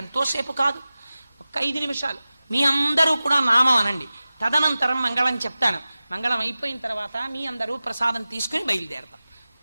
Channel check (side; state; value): both; inverted; correlation -0.96